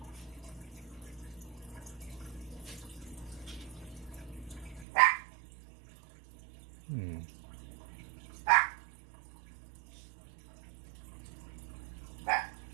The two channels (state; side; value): drops out; left; at 4.9 s